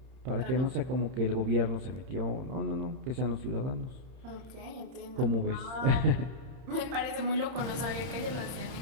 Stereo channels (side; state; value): left; late; 30 ms